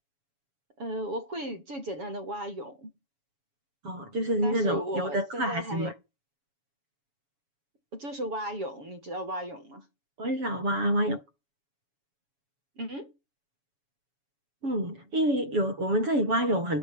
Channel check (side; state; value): left; late; 7.2 ms